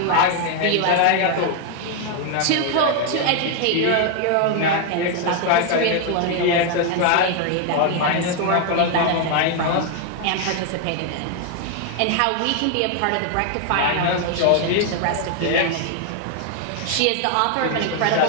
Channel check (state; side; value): different; both; correlation 0.00